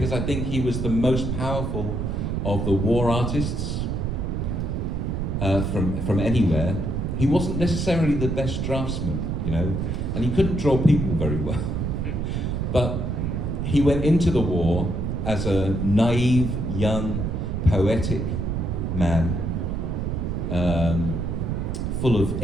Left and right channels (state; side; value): noise; right; rumble, 1 dB below the sound